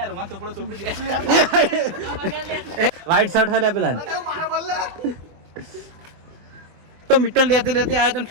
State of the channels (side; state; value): left; late; 24 ms